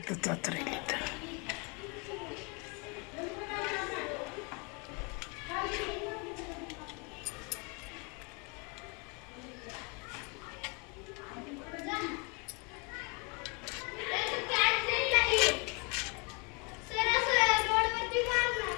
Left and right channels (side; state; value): right; quieter; 31.4 dB